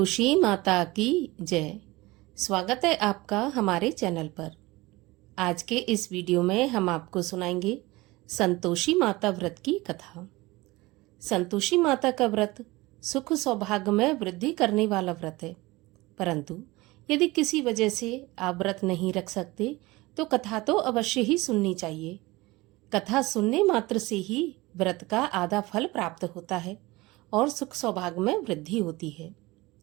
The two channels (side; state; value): left; quieter; 21.2 dB